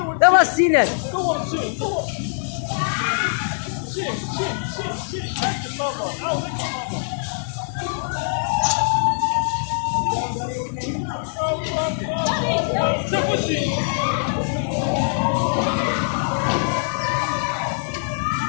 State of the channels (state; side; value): silent; right; digital silence